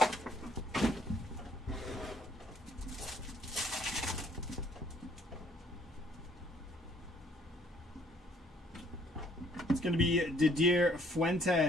It's going to be Didier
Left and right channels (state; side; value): normal; both; correlation 0.63